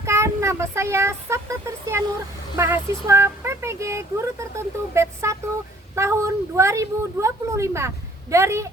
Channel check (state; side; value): normal; both; correlation 0.57